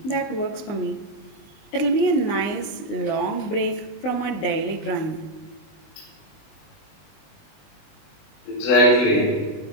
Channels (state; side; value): late; right; 20 ms